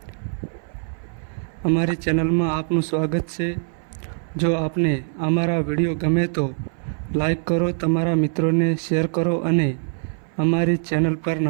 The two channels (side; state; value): left; silent; 58 dB below the other